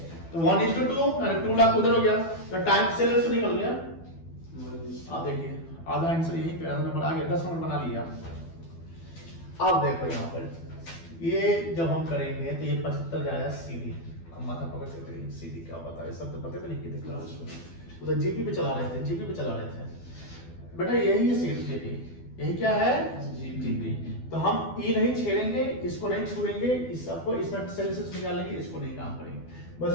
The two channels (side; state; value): right; late; 12 ms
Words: तो 1:2 अरे 2 लाख उधर हो गया। तो टाइम सेल से निकल गया। अब देखिए आधा आंसर यहीं पे, आधा नंबर आ गया, 10 नंबर बना लिया। अब देखो यहां पर ये जब हम करेंगे तो ये 75 जाएगा सीधी। अब माथा पकड़ के सीधी क्या पता है, सब तो पता भी नहीं किए थे क्लास में। उधर जीपी पे चला रहे थे, जीपी पे चला रहे थे। बेटा यही है सीधी जीपी, यही क्या है? जीपी। तो हम ई नहीं छेड़ेंगे, इसको नहीं छुएंगे, इस सबको इसमें सेल से निकालेंगे, इसको नहीं काम करेंगे। बस